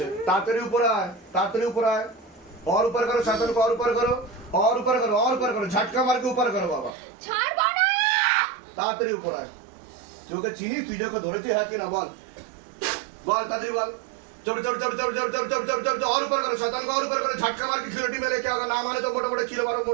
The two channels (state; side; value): drops out; left; at 6.9 s